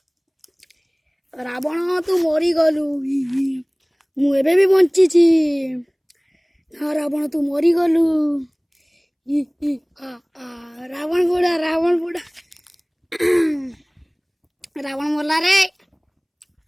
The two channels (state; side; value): identical; both; correlation 1.00